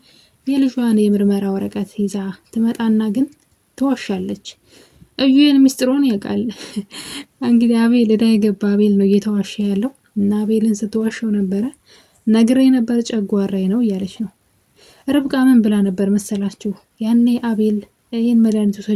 የልጇን የምርመራ ወረቀት ይዛ ትመጣና ግን ትዋሻለች። እዩን ሚስጥሩን ያውቃል። እንግዲህ አቤል እዳ የገባ አቤል ነው እየተዋሸ ያለው እና አቤልን ስትዋሸው ነበረ። ነግሬ ነበር ጨጓራዬ ነው እያለች ነው። ርብቃ ምን ብላ ነበር መሰላችሁ? ያኔ አቤል ይህን መድኃኒት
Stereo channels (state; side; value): identical; both; correlation 1.00